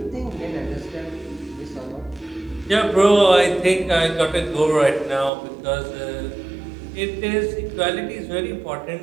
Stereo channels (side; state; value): left; drops out; at 5.3 s